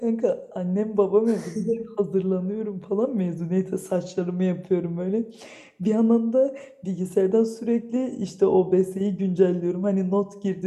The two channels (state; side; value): identical; both; correlation 1.00